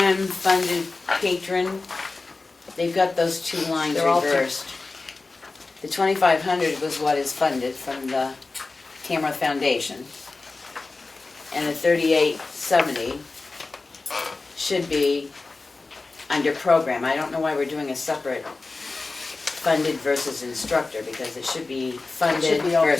funded patron, they've got those two lines They're all reversed. The 2,500 was what is funded from the Tamworth Foundation. And the 3,870 should be under program. I don't know why we're doing a separate funded versus instructor, because it should be It funded should be all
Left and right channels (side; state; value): right; quieter; 3.6 dB